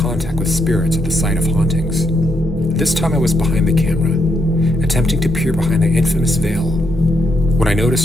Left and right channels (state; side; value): normal; both; correlation 0.78